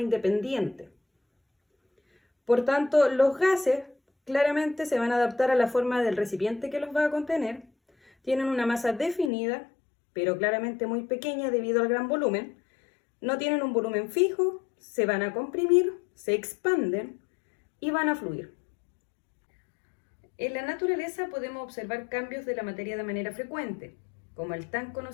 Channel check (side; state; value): right; drops out; at 9.3 s